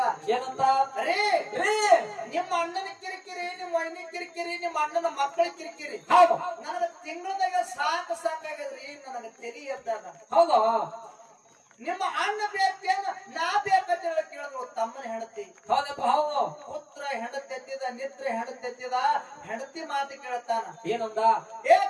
ಏನಂತ? ಅರೇ ನಿಮ್ಮ ಅಣ್ಣನ ಕಿರಿಕಿರಿ, ನಿಮ್ಮ ವೈನಿ ಕಿರಿಕಿರಿ, ನಿಮ್ಮ ಅಣ್ಣನ ಮಕ್ಕಳ ಕಿರಿಕಿರಿ ನನಗ ತಿಂಗಳದಾಗ ಸಾಕಾಗದ್ರಿ. ನನಗ ತೆಲಿ ಎದ್ದಾಗ ಹೌದು. ನಿಮ್ಮ ಅಣ್ಣ ಬೇಕೇನ ನಾ ಬೇಕಂತ ಹೇಳಿ ಕೇಳಿದ್ರು ತಮ್ಮನ ಹೆಂಡತಿ. ಹೌದಪ್ಪ ಹೌದು. ಪುತ್ರ ಹೆಂಡತಿ ಎತ್ತಿದ, ನಿತ್ರ ಹೆಂಡತಿ ಎತ್ತಿದ. ಹೆಂಡತಿ ಮಾತು ಕೇಳ್ತಾನ. ಏನಂದ?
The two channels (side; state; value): both; identical; correlation 1.00